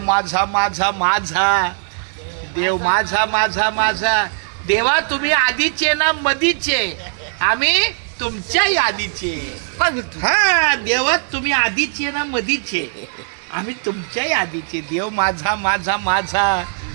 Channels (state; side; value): silent; left; digital silence